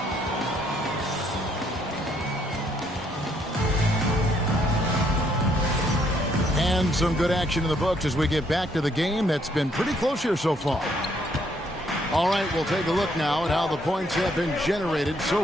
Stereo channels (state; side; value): normal; both; correlation 0.69